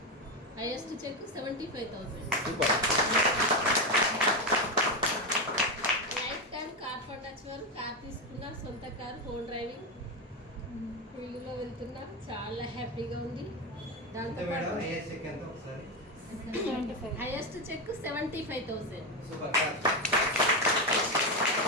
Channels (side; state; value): both; normal; correlation 0.11